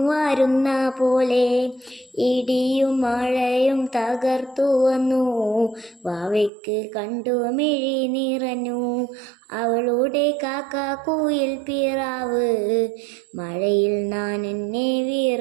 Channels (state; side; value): drops out; left; at 6.5 s